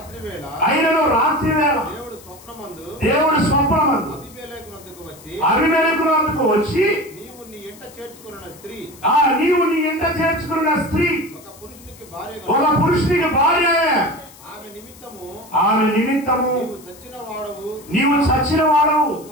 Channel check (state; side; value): noise; left; hiss, 22 dB below the sound